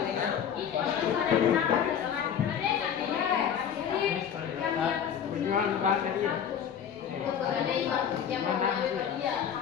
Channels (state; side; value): quieter; right; 8.4 dB